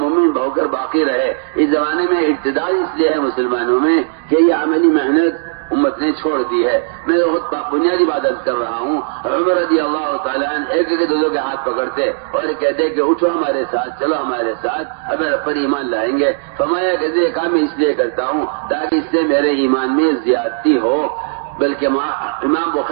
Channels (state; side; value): silent; left; digital silence